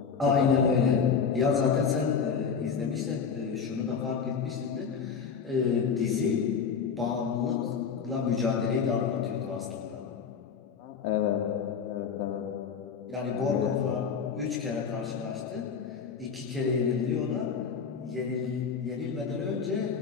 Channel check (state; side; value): quieter; right; 6.3 dB